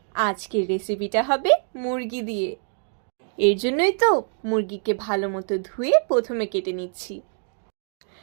আজকের রেসিপিটা হবে মুরগি দিয়ে। এর জন্যই তো মুরগিকে ভালো মতো ধুয়ে প্রথমে কেটে নিচ্ছি।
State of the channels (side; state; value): left; silent; 57 dB below the other